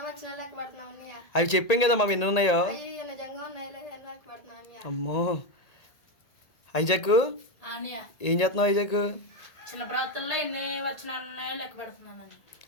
అవి చెప్పాం కదమ్మా ఎన్ని ఉన్నాయో. అమ్మో ఐజాక్ ఏం చేస్తున్నావు? ఐజాక్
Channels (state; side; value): late; right; 1.8 ms